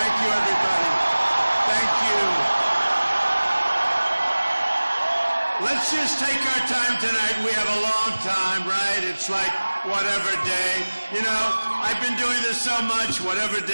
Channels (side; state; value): both; inverted; correlation -1.00